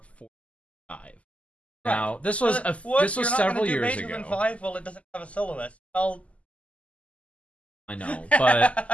45. Now this was this was several years ago. 5? Well, it doesn't have a soloist. Well, I know,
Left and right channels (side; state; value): right; late; 0.066 ms